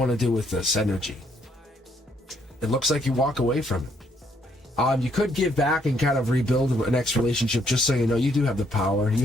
to do with this energy? It looks like you walk away from it. You could give back and kind of rebuild a next relationship, just so you know you do have the power. You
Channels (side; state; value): both; normal; correlation 0.70